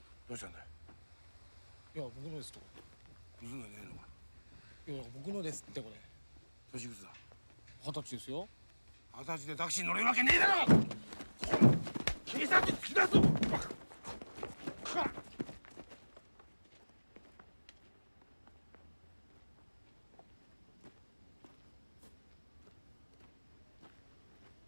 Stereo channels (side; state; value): both; inverted; correlation -1.00